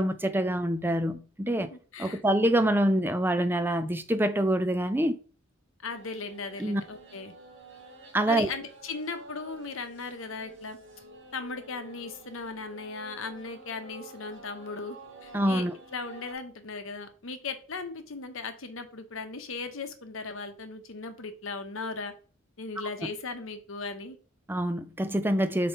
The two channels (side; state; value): both; normal; correlation 0.68